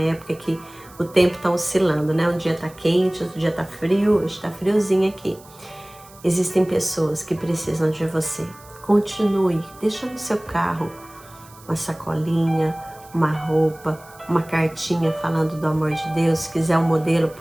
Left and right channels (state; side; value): noise; right; hiss, 24 dB below the sound